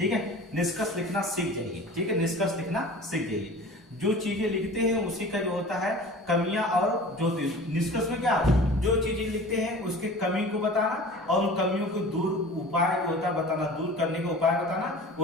है, निष्कर्ष लिखना सीख जाइए। ठीक है, निष्कर्ष लिखना सीख जाइए, जो चीजें लिखते हैं उसी का जो होता है कमियां, और जो निष्कर्ष में क्या, जो चीजें लिखते हैं उसके कमी को बताना और उन कमियों को दूर उपाय जो होता है बताना, दूर करने का उपाय बताना,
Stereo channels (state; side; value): normal; both; correlation 0.40